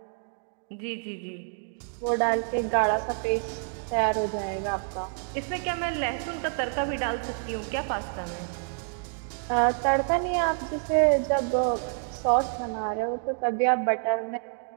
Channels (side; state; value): left; silent; 57 dB below the other